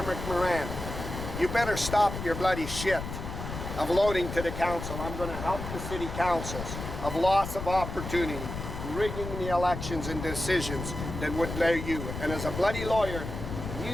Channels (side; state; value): left; noise; rumble, 7 dB below the sound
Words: Moran, you better stop your bloody shit of loading to the council. I'm going to help the city councils of loss of opportunity, rigging the elections and decisions that would allow you. And as a bloody lawyer,